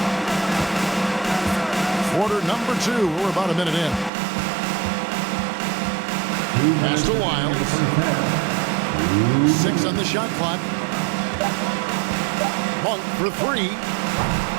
Quarter number 2. We're about a minute in. Pass to Wiles. 6 on the shot clock. Monk for 3.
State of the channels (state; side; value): drops out; left; at 4.1 s